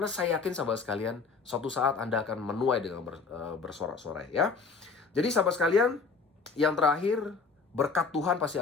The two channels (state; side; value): quieter; right; 4.8 dB